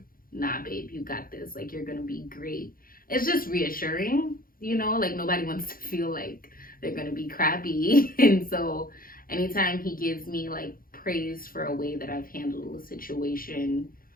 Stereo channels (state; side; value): late; right; 0.42 ms